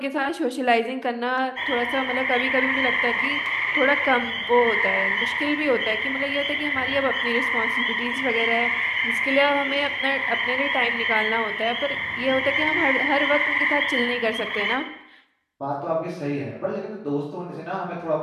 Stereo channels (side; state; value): both; identical; correlation 1.00